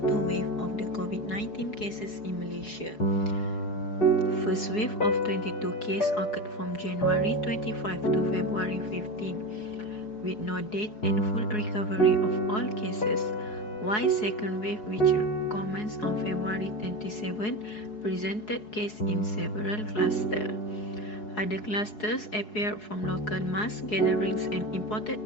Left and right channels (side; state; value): right; late; 4.7 ms